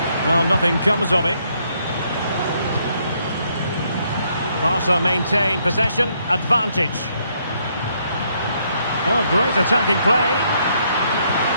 Well, nothing comes of it. Barca maintain possession, advantage. Oh, great attacking play.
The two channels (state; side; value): inverted; both; correlation -0.72